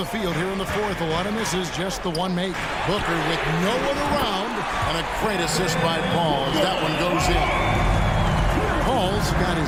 field here in the 4th. A lot of misses, just the one make. Booker with no one around. And a great assist by Paul as that one goes in. Paul's got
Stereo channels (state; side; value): identical; both; correlation 1.00